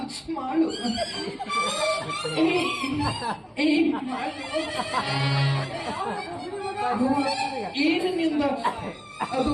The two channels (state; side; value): identical; both; correlation 1.00